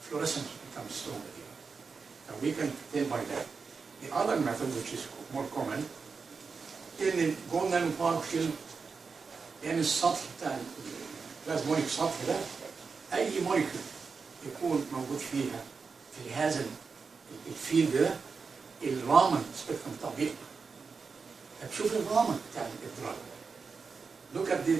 Fluorescence becomes stronger here. And we can tell by that. The other method, which is more common, إن الجول نانو بارتكل يعني السطح بتاع البلازمونيك سطح ده أي موليكول يكون موجود فيها في هذا الفيلد ده الرامن سبيكترم بتاعه بيقطع. هتشوف الرامن بتاع الإدراك. Look at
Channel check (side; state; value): left; quieter; 5.0 dB